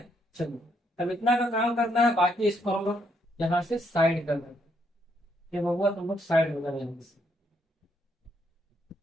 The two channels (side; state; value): both; normal; correlation 0.74